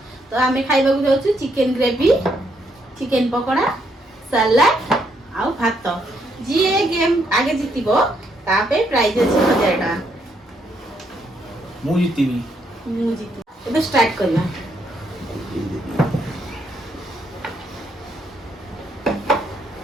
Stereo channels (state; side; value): normal; both; correlation 0.74